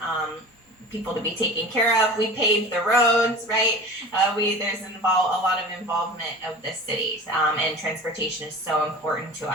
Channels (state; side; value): normal; both; correlation 0.36